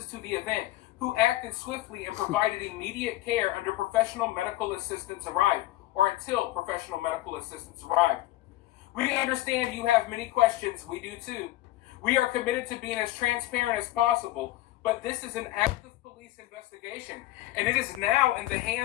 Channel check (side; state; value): right; quieter; 16.6 dB